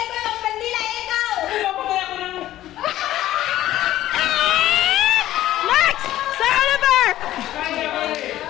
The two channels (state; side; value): quieter; right; 13.9 dB